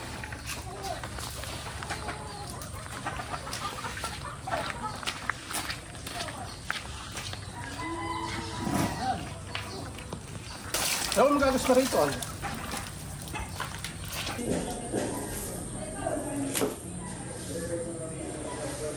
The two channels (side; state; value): both; identical; correlation 1.00